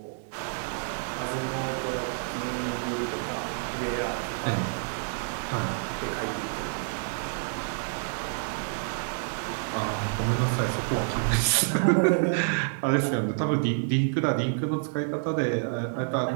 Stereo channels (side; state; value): left; silent; digital silence